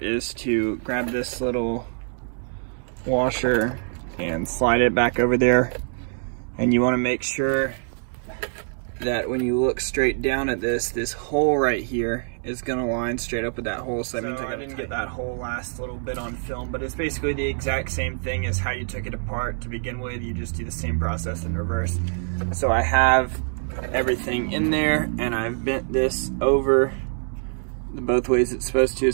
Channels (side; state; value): left; silent; 62 dB below the other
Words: to grab this little washer and slide it back over there. And you want to make sure that when you look straight down at this hole right here is going to line straight up with that hole. So that means I didn't get that whole last little bit on film, but it's basically the exact same thing as how you took it apart to begin with. You just do the same process in reverse. So I have everything in there, and I've bent this over both ways it's supposed to,